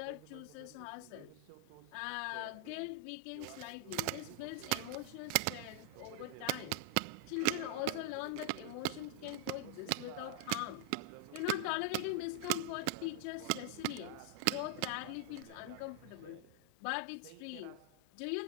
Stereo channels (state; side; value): different; both; correlation -0.01